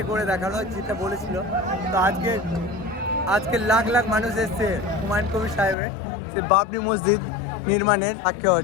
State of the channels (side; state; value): right; drops out; at 5.8 s